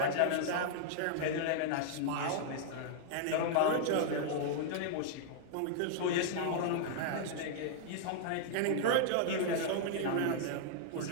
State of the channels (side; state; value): both; different; correlation -0.01